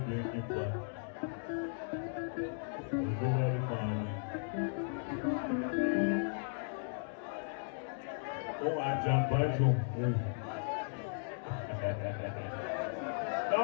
Uzobali mali. Ungajamba nje.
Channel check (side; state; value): right; silent; digital silence